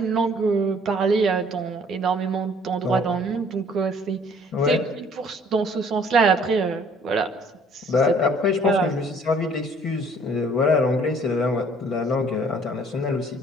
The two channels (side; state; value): both; normal; correlation 0.57